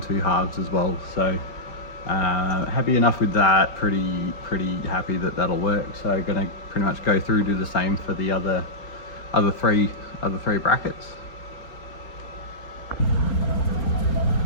two halves as well. So happy enough with that. Pretty happy that that'll work. So going to pretty much go through, do the same for the other three brackets.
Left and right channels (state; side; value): late; right; 4.3 ms